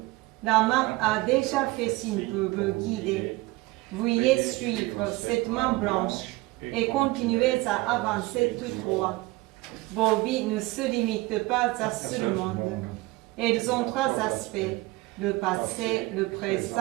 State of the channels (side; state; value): left; quieter; 20.7 dB